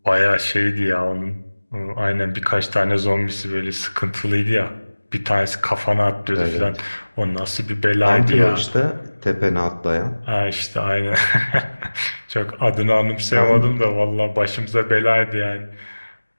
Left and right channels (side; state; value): both; inverted; correlation -1.00